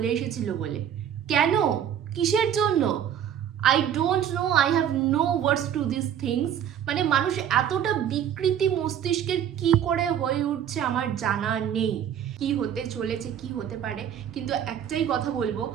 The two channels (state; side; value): quieter; left; 9.5 dB